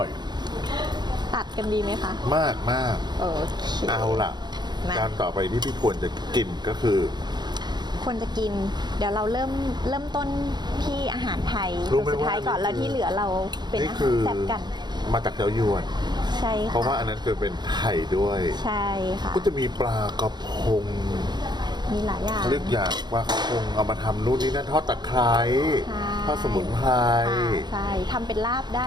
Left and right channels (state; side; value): late; left; 0.21 ms